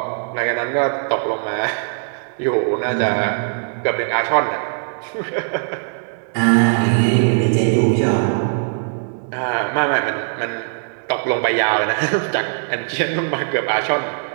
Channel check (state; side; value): silent; left; digital silence